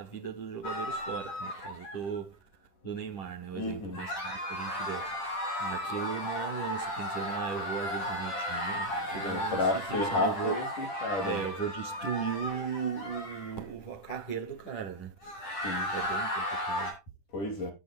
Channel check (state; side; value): late; right; 10 ms